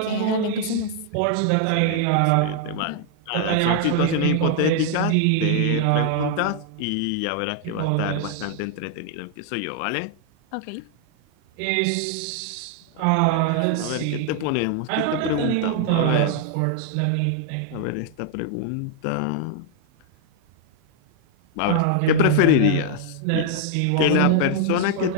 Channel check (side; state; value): both; different; correlation 0.00